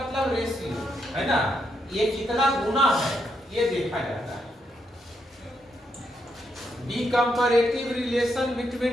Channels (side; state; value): both; normal; correlation 0.80